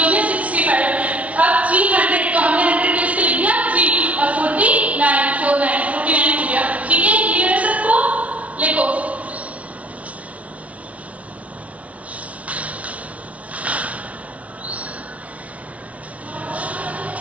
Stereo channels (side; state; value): left; late; 0.066 ms